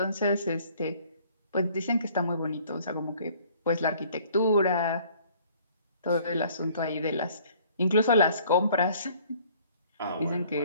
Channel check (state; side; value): inverted; both; correlation -0.56